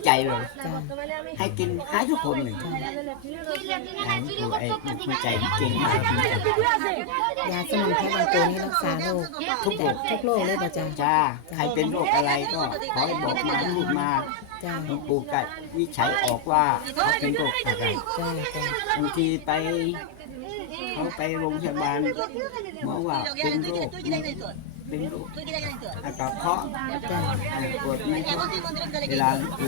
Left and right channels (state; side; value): different; both; correlation 0.00